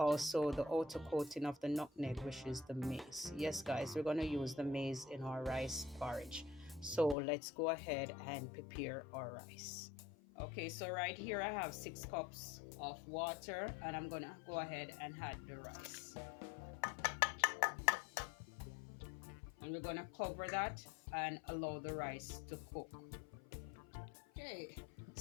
the outer coating of the nutmeg, which is the maize. Yes guys, we're going to use the maize in our rice porridge. So let's go ahead and prepare our rice. Okay, so right here I have 6 cups of water, and I'm gonna go ahead and add the rice. And we're gonna cover that and allow the rice to cook. Okay,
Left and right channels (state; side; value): drops out; right; at 7.2 s